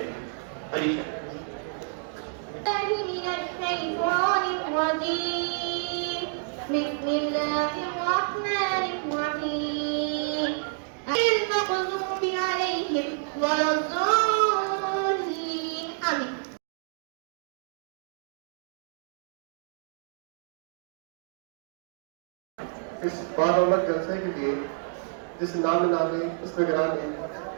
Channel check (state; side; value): silent; left; 59 dB below the other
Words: अलीशा। इस बादौलत जलसे के लिए जिस नामी इस्तिगरानी